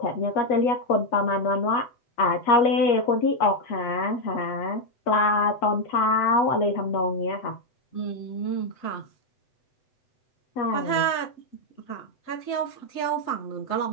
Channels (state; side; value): late; right; 7.9 ms